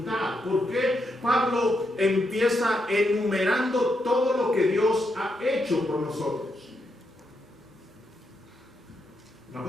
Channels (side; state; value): both; normal; correlation 0.81